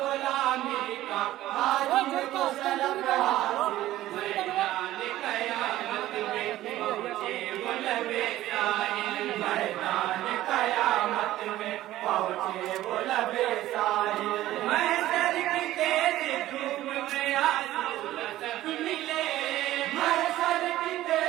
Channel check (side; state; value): left; quieter; 14.8 dB